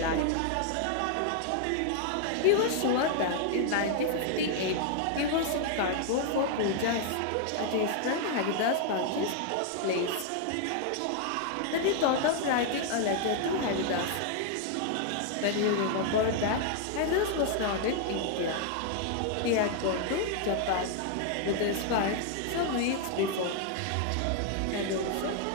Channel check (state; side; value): different; both; correlation 0.00